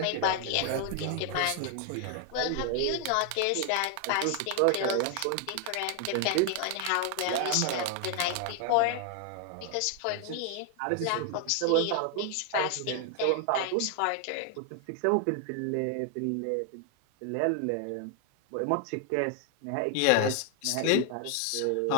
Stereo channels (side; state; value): both; different; correlation 0.00